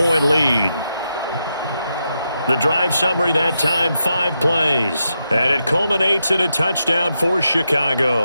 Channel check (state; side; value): inverted; both; correlation -0.84